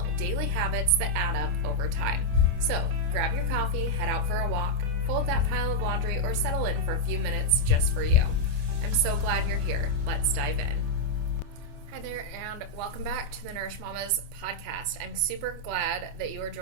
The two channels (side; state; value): left; late; 27 ms